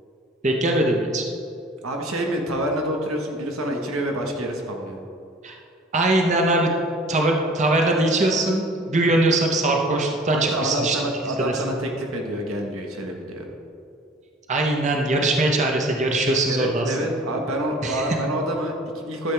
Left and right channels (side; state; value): both; normal; correlation 0.47